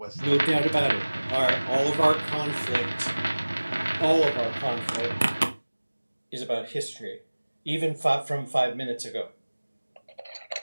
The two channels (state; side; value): inverted; both; correlation -1.00